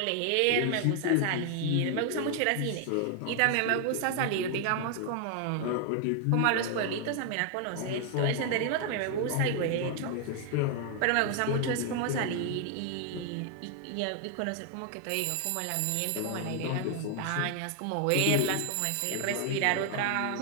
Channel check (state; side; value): different; both; correlation 0.00